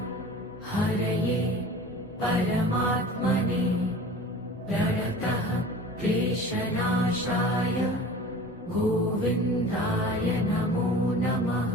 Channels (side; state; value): both; normal; correlation 0.40